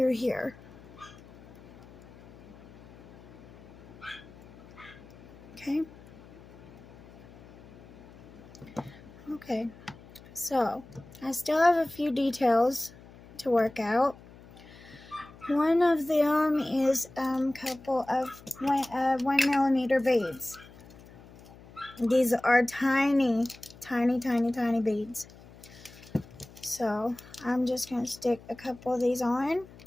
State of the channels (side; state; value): left; noise; hum, 21 dB below the sound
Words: here. Okay. Okay. So I still have a few details to work out. One of them is a couple of 1mm beads. These are tiny, tiny, tiny, tiny beads. So I'm just going to stick a couple of these on.